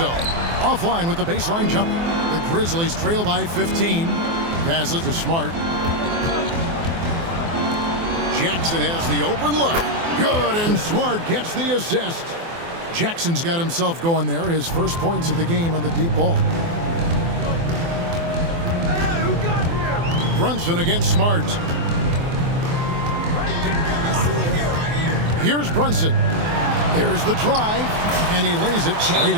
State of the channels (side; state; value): left; late; 24 ms